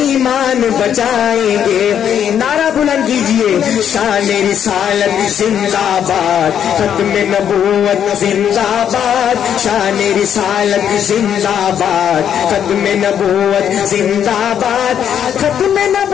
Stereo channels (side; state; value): right; quieter; 9.0 dB